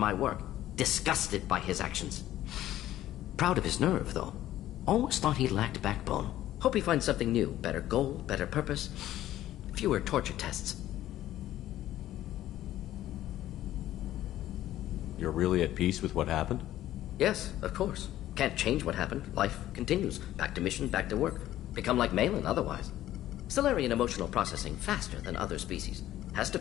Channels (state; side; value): quieter; right; 13.6 dB